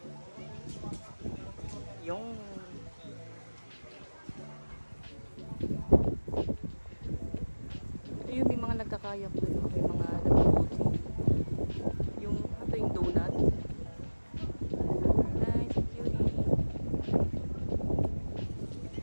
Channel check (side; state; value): both; inverted; correlation -1.00